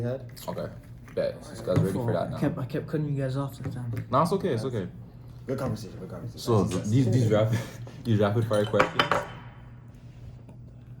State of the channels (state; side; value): identical; both; correlation 1.00